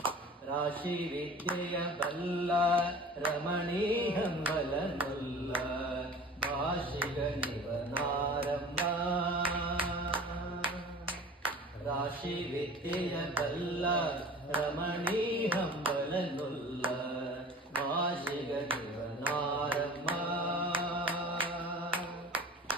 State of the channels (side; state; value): both; normal; correlation 0.42